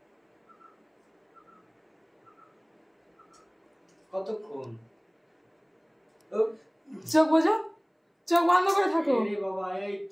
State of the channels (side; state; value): both; identical; correlation 1.00